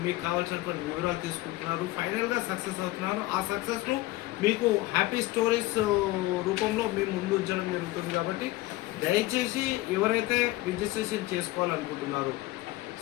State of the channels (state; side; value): quieter; right; 18.4 dB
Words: మీకు కావాల్సినటువంటి వివరాలు తీసుకుంటున్నారు. ఫైనల్గా సక్సెస్ అవుతున్నారు. ఆ సక్సెస్ను మీకు హ్యాపీ స్టోరీస్ రూపంలో మేము ముందు ఉంచడం జరుగుతుంది. కాబట్టి దయచేసి ఎవరైతే రిజిస్ట్రేషన్ చేసుకోవాలనుకుంటున్నారో